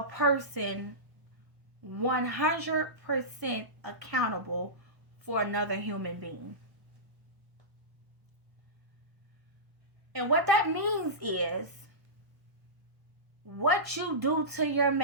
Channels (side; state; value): left; late; 1.1 ms